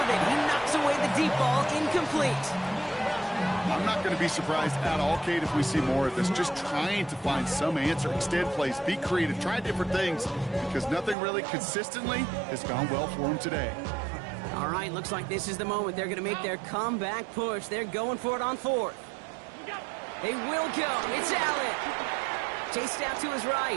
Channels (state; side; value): drops out; left; at 11.2 s